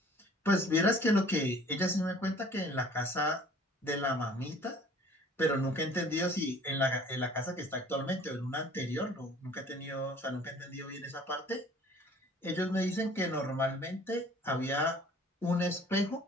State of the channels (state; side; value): normal; both; correlation 0.52